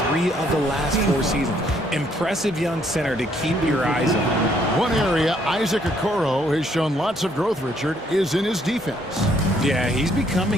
3 of the last 4 seasons. Impressive young center to keep your eyes on. One area Isaac Okoro has shown lots of growth, Richard, is in his defense. Yeah, he's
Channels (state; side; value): normal; both; correlation 0.68